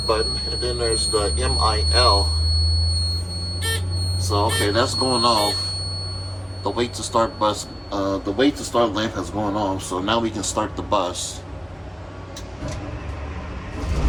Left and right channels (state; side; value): identical; both; correlation 1.00